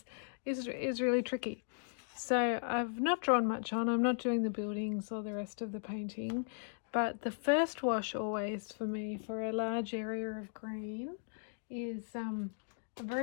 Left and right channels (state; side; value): silent; right; digital silence